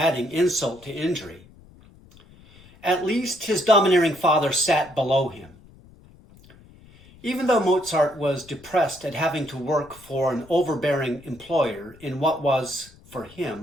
insult to injury. At least his domineering father sat below him. Even though Mozart was depressed at having to work for an overbearing employer in what was, for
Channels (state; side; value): noise; left; rumble, 24 dB below the sound